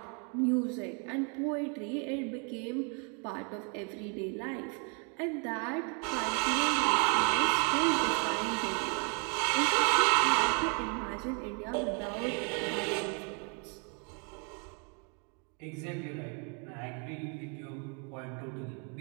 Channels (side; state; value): left; quieter; 36.8 dB